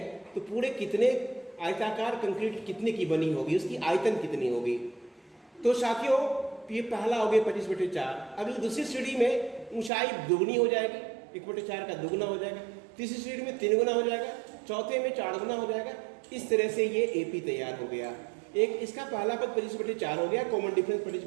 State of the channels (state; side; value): drops out; left; at 9.9 s